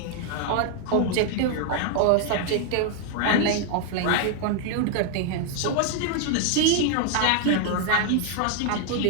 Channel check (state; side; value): different; both; correlation 0.00